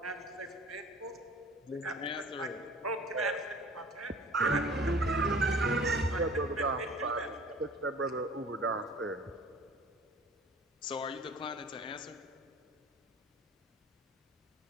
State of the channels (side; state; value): both; normal; correlation 0.46